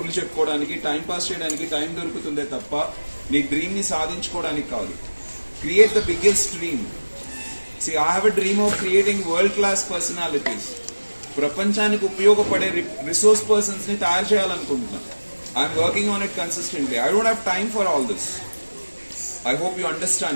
చెప్పుకోవడానికి, టైం పాస్ చేయడానికి టైం దొరుకుతుందే తప్ప నీ డ్రీమ్ ని సాధించుకోవడానికి కాదు. Create the biggest dream. See, I have a dream of creating world-class personalities. ప్రపంచానికి ఉపయోగపడే రిసోర్స్ పర్సన్స్ ని తయారు చేయాలనుకుంటున్నా. I'm working on it consistently. I don't have time for all this. I hope you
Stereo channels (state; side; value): inverted; both; correlation -1.00